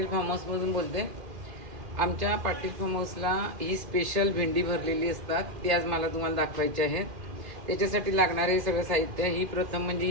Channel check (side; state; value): left; late; 2.5 ms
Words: फार्म हाऊसमधून बोलते. आमच्या पाटील फार्म हाऊसला ही स्पेशल भेंडी भरलेली असतात, ती आज मला तुम्हाला दाखवायची आहे. त्याच्यासाठी लागणारे सगळं साहित्य, ही प्रथम म्हणजे